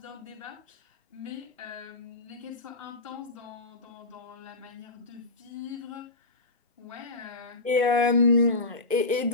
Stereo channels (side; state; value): right; quieter; 3.1 dB